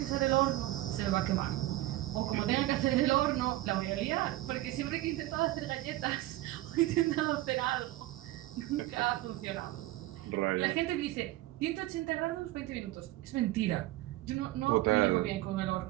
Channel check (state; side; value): quieter; left; 16.9 dB